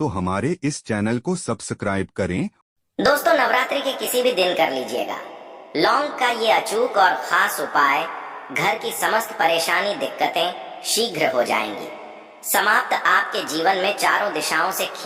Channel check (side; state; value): both; identical; correlation 1.00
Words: हमारे इस चैनल को सब्सक्राइब करें। दोस्तों, नवरात्रि के किसी भी दिन कर लीजिएगा लौंग का ये अचूक और खास उपाय, घर की समस्त परेशानी दिक्कतें शीघ्र हो जाएंगी समाप्त। आपके जीवन में चारों दिशाओं से